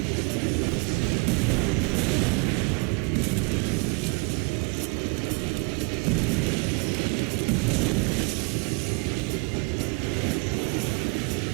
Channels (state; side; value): quieter; left; 31.0 dB